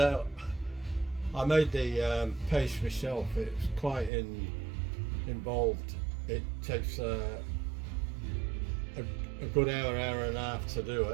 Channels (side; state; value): left; drops out; at 4.1 s